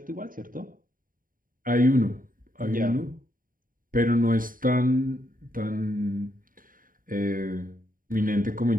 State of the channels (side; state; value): left; late; 0.40 ms